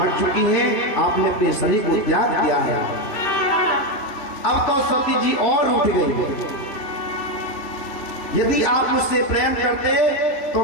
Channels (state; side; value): late; right; 3.0 ms